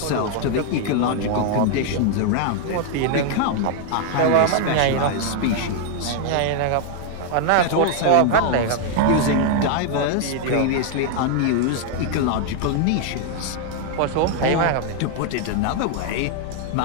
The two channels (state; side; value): different; both; correlation 0.00